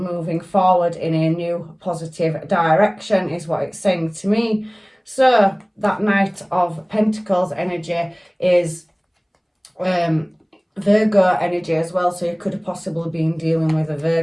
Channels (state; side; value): identical; both; correlation 1.00